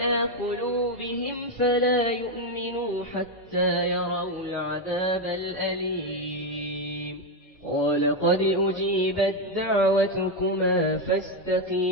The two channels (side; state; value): both; normal; correlation 0.06